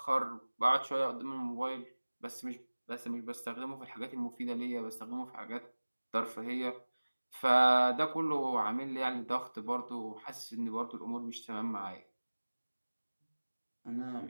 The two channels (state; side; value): inverted; both; correlation -1.00